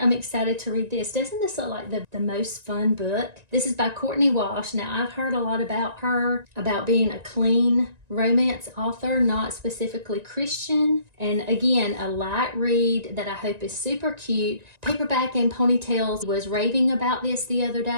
excited to read this. Doesn't this look like the most fun book? This is by Courtney Walsh. Now, I've heard a lot about her, about being a clean romance author, not specifically Christian. And again, a light read that I hope is super cute. Paperback and Ponytails was raving about this the other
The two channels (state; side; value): late; left; 1.9 ms